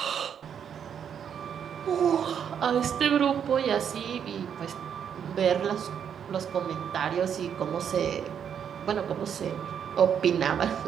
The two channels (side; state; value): left; quieter; 8.2 dB